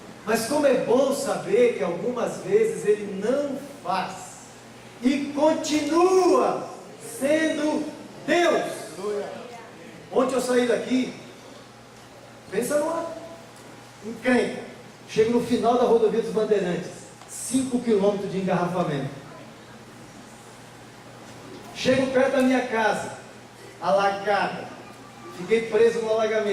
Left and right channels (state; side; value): identical; both; correlation 1.00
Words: Mas como é bom saber que algumas vezes Ele não faz. E continua sendo Deus. Ontem eu saí daqui, pensa numa encrenca. Chego no final da rodovia dos Bandeirantes, 5 quilômetros de engarrafamento. Chego perto da minha casa, alagada. Fiquei preso no